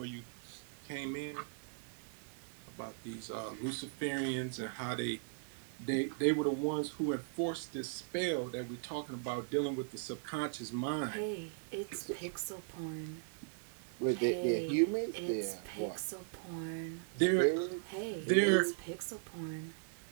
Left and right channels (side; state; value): left; silent; digital silence